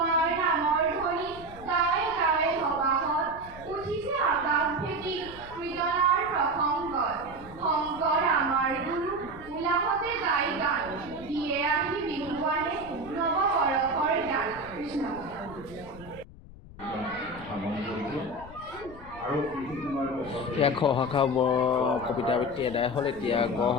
নামৰ ধ্বনি গাই গাই সবাহত উঠিছে আকাশ ভেটি কীৰ্তনাৰ প্ৰসংগত শংকৰ আমাৰ গুৰু উলাহতে গাই গান দিয়ে আহি বিহুৱানে নৱবৰষৰ গান কৃষ্ণ এতিয়া খ শাখা কবিতা আবৃত্তি এদায় হ'ল এতিয়া গ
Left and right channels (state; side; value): noise; left; rumble, 17 dB below the sound